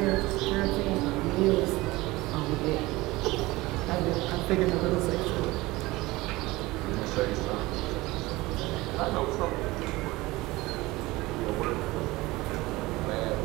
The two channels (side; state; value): left; quieter; 20.5 dB